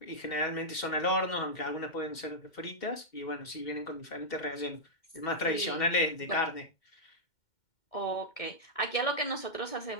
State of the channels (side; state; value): right; late; 2.1 ms